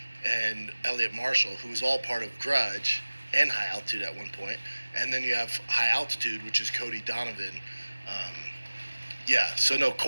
and Elliot Marshall, who was all part of Grudge and High Altitude at one point. And then you have High Altitude, which is Cody Donovan. Yeah, so no,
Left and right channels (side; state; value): both; inverted; correlation -1.00